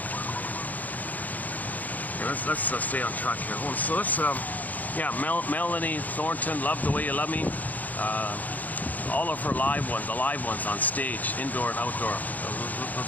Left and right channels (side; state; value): right; late; 0.080 ms